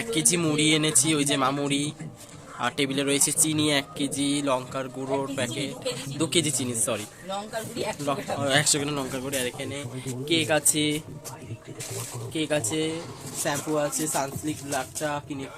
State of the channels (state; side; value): identical; both; correlation 1.00